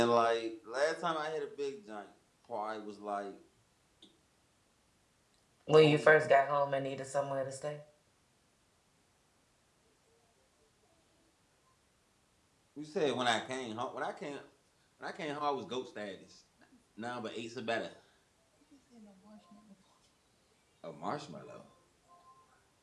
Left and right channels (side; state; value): both; identical; correlation 1.00